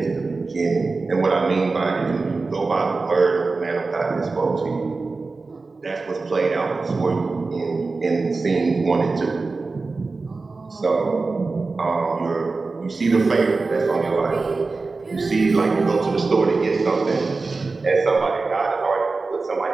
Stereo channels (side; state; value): left; quieter; 3.9 dB